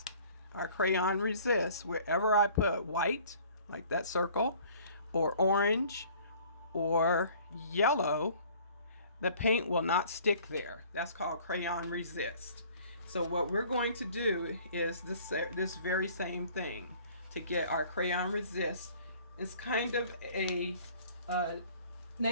our crayon resists. Wherever I put white, like that circle, or orange, or yellow, the paint will not stick there. That's called crayon resist. So what we're going to do is this very same thing to get our crayon resist. It's kind of a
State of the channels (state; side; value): inverted; both; correlation -0.52